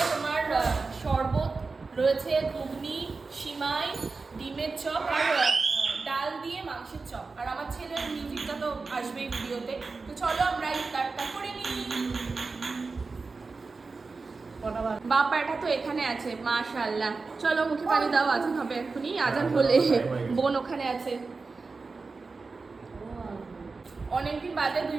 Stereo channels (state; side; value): quieter; left; 4.1 dB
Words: তোমার শরবত, রয়েছে ঘুগনি, সিমাই, ডিমের চপ আর ডাল দিয়ে মাংসের চপ। আর আমার ছেলের মিউজিকটা তো আসবেই ভিডিওতে। তো চলো আমরা ইফতারটা করে নিই। বাবা এটা তো এখানে আছে, মাশাআল্লাহ। চলো মুখে পানি দাও, আজান হবে এক্ষুনি। আজান হলে বোন ওখানে আছে। অনেকদিন বাদে